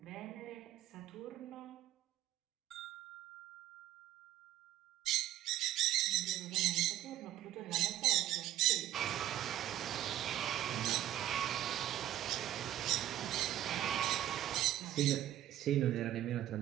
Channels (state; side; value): quieter; left; 13.0 dB